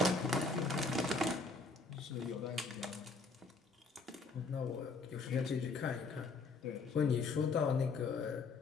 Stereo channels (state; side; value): quieter; right; 3.9 dB